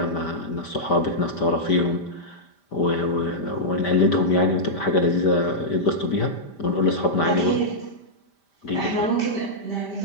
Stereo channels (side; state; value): right; late; 5.1 ms